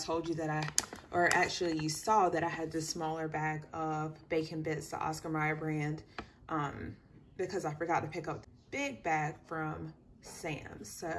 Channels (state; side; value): identical; both; correlation 1.00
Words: you that or actually you saw that I had this smaller bag of bacon bits, the Oscar Mayer brand, because I forgot to pick up the big bag from Sam's. So